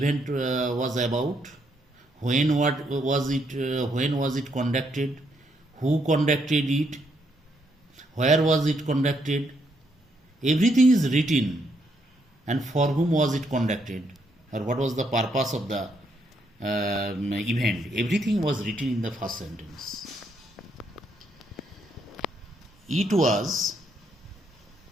was about, when was it conducted, who conducted it, where was it conducted. Everything is written, and for whom was it conducted, or what was the purpose of the event. Everything was written in the first sentence. It was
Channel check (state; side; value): normal; both; correlation 0.75